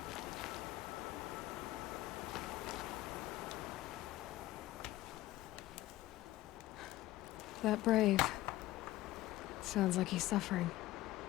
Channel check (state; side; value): quieter; right; 16.3 dB